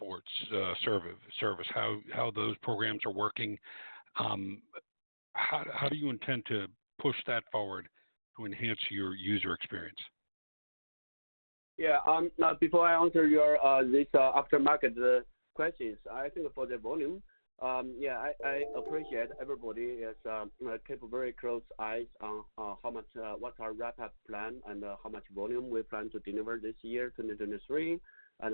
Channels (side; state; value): both; inverted; correlation -1.00